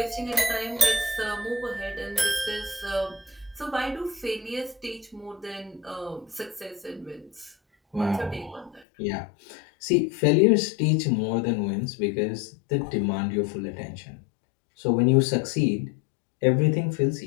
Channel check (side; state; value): right; drops out; at 8.8 s